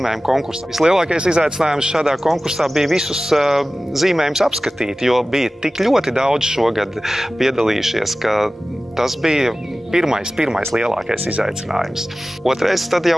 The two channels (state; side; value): normal; both; correlation 0.96